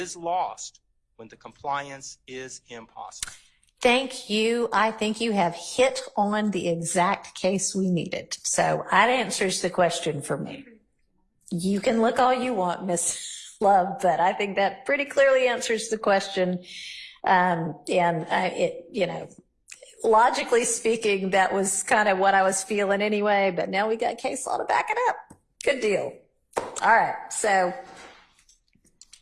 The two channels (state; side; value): identical; both; correlation 1.00